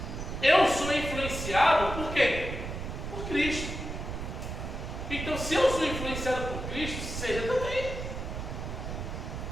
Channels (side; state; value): right; noise; rumble, 6 dB below the sound